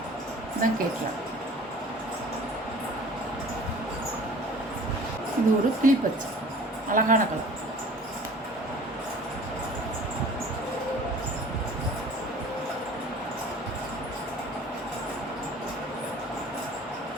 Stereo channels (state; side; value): normal; both; correlation 0.46